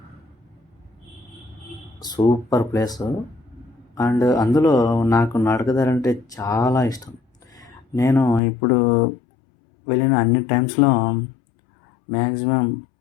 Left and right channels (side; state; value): right; drops out; at 8.4 s